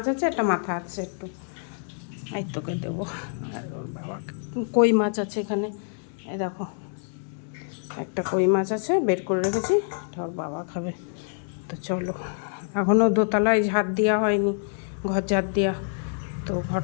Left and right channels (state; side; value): silent; right; 61 dB below the other